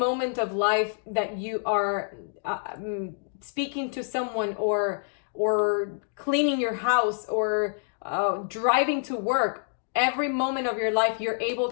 of life that you are speaking to someone, or cleaning your house, or driving to work, every moment of your life, you're able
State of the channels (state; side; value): silent; right; digital silence